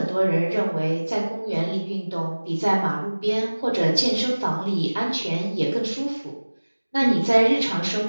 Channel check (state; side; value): inverted; both; correlation -1.00